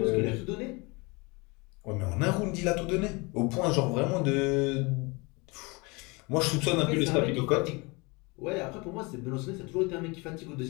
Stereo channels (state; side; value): quieter; right; 27.1 dB